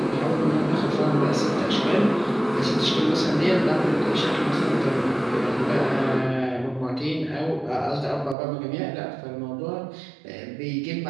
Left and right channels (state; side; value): drops out; left; at 8.3 s